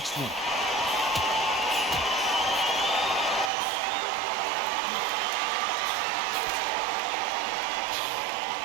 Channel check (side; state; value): left; drops out; at 3.5 s